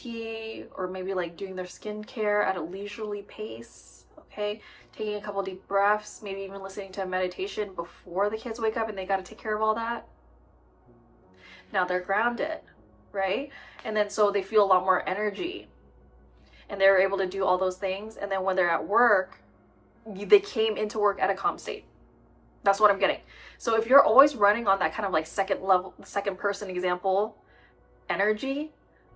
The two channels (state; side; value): identical; both; correlation 1.00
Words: or maybe like doing their skincare at a leisurely pace, okay? Taking a couple deep breaths, maybe even listening to a meditation before the kids wake up and they got to take care of all that. Now they're grounded, right? And then so they feel a lot more energy and they're able to do all those things. And then when they're at work, they came into work at a calm state. That's what I'm getting. So if you're always running on that kind of like second person example energy,